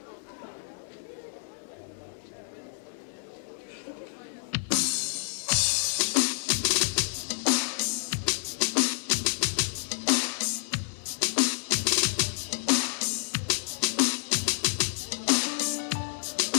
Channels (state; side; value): silent; right; digital silence